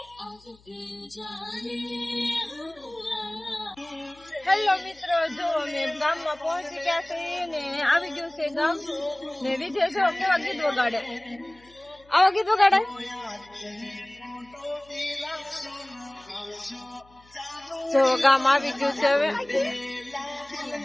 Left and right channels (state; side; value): noise; left; hum, 29 dB below the sound